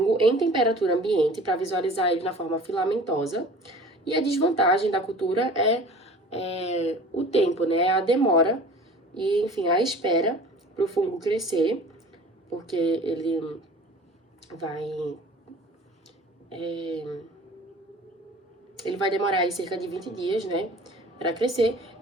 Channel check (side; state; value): both; normal; correlation 0.44